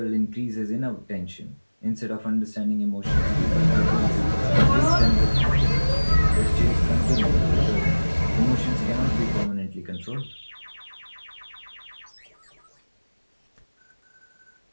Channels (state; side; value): inverted; both; correlation -1.00